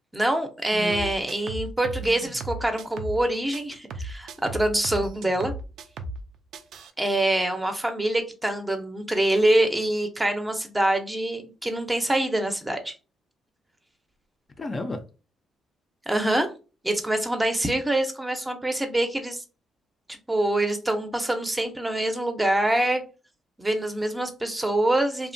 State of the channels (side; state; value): both; normal; correlation 0.91